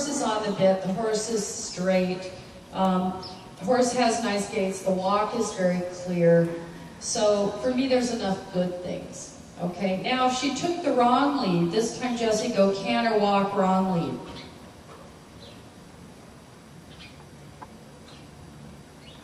is on the bit, the horse is straight, the horse has nice gaits, the walk is very clear. So for me, there's enough good things. Okay, now if she took the wrong lead, this time Jessie, go canter, walk, wrong lead.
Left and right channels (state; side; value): identical; both; correlation 1.00